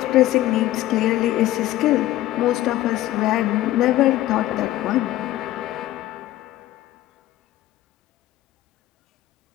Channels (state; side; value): quieter; right; 15.1 dB